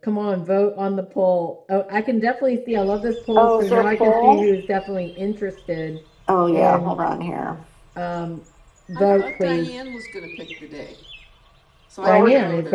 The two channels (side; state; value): both; identical; correlation 1.00